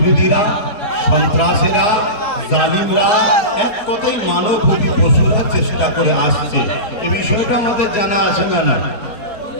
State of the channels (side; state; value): right; late; 4.7 ms